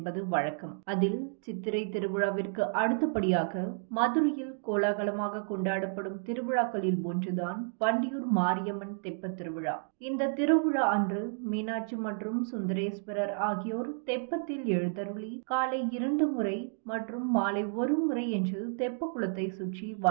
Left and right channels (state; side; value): silent; left; digital silence